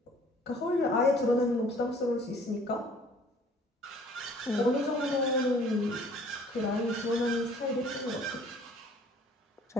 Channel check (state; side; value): normal; both; correlation 0.54